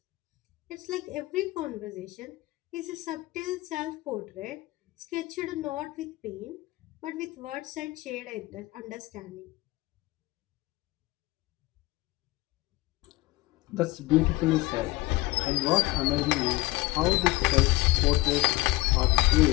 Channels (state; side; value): quieter; right; 20.6 dB